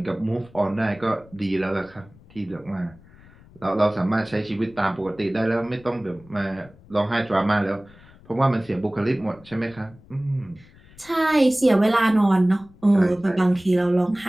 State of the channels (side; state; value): left; noise; rumble, 25 dB below the sound